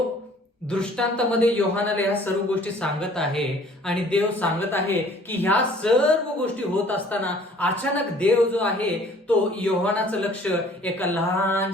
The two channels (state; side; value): normal; both; correlation 0.54